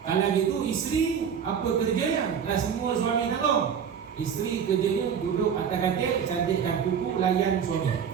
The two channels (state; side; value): quieter; left; 7.5 dB